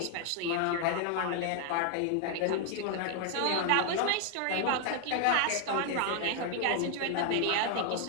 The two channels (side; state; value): both; different; correlation 0.00